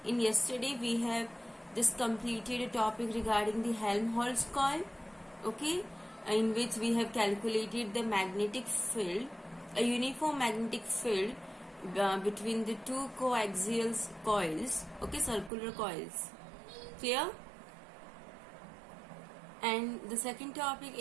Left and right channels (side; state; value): left; drops out; at 15.5 s